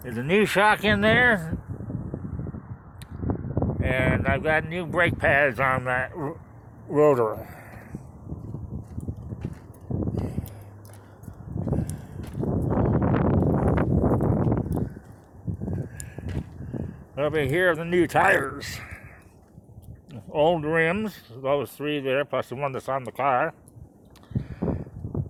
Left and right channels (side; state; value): both; identical; correlation 1.00